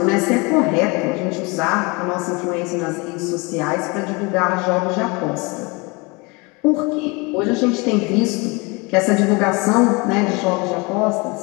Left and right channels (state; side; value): quieter; right; 27.6 dB